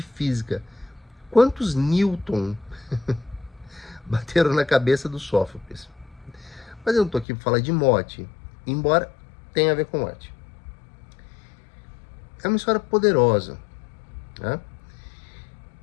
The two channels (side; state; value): right; drops out; at 7.2 s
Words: física. Quantos Newton bateram na cabeça do Sófocles? Mas eu não estou aqui para falar de morte, embora tenha a ver com morte. É uma história poderosa. Né?